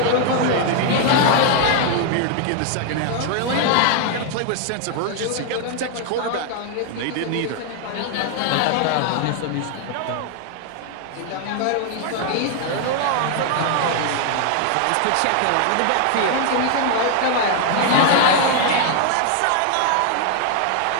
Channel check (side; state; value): both; different; correlation 0.00